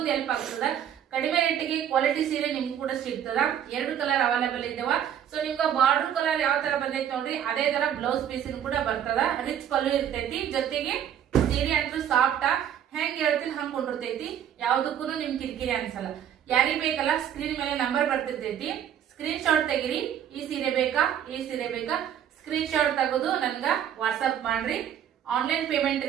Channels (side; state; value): left; quieter; 9.6 dB